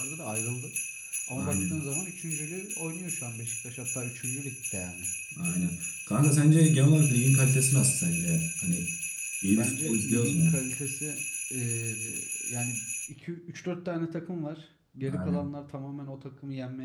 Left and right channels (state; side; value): identical; both; correlation 1.00